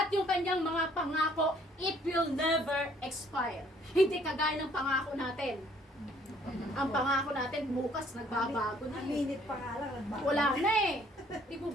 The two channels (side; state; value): both; normal; correlation 0.61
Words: yung kanyang mga pangako, it will never expire. Hindi kagaya ng pangako natin. Ang pangako natin bukas nagbabago na Ang minute pa nga lang, nagbago. wala na eh. Di po